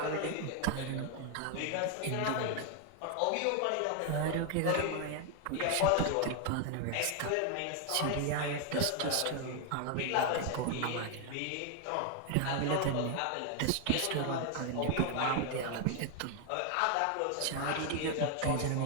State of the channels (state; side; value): different; both; correlation 0.01